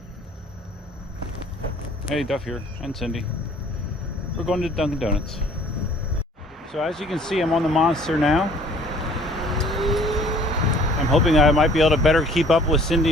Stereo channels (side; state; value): both; normal; correlation 0.54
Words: Hey, Duff here, and Cindy. We're going to Dunkin' Donuts. So as you can see, I'm on the Monster now. I'm hoping I might be able to better keep up with